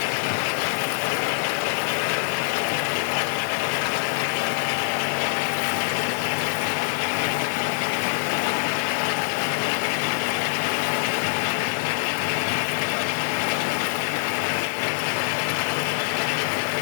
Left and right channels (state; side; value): silent; right; 62 dB below the other